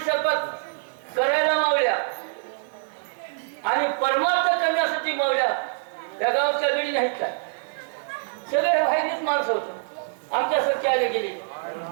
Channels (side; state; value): left; silent; digital silence